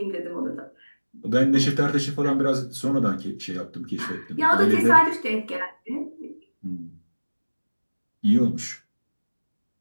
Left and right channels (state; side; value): inverted; both; correlation -1.00